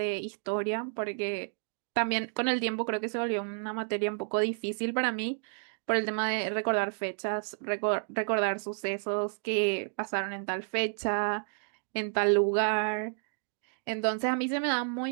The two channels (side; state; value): left; silent; 57 dB below the other